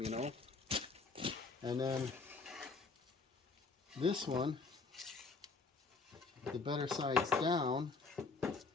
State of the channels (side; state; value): right; quieter; 4.2 dB